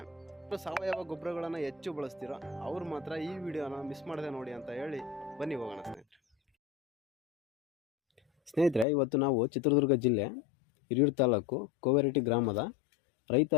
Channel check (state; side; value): drops out; right; at 8.8 s